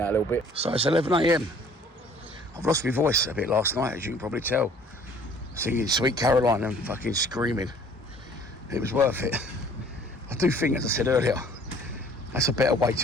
a little bit. So it's 11 a.m. I've lost my voice a bit last night, as you can probably tell. Singing Sweet Caroline and fucking screaming. It was worth it. I do think, as I said earlier, that's a better way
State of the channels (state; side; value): normal; both; correlation 0.54